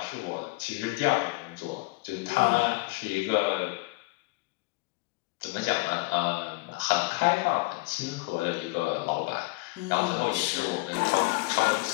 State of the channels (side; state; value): right; quieter; 24.8 dB